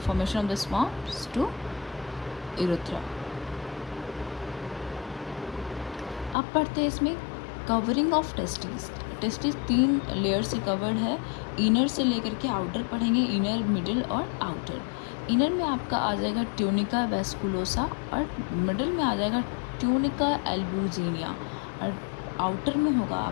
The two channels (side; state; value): right; drops out; at 6.4 s